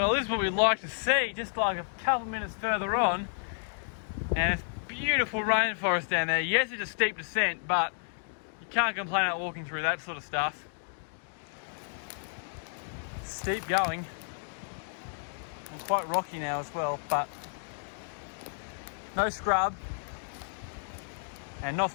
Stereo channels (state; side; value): silent; right; digital silence